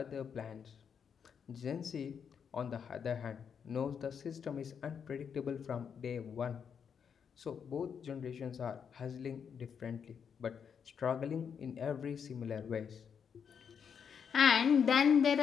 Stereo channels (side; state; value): right; quieter; 7.1 dB